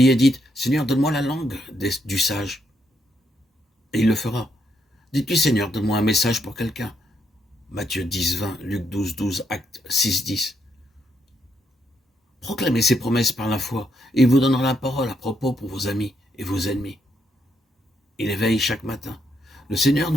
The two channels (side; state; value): both; normal; correlation 0.77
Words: dites, Seigneur, donne-moi la langue du sage. Et il le fera. Dites-lui, Seigneur, donne-moi un message pour quelqu'un. Matthieu 10, 20, Luc 12, 12, Actes 6, 10. Proclamez ces promesses par la foi, et il vous donnera la parole à propos pour vos amis et vos ennemis. Il éveille chaque matin. Le Seigneur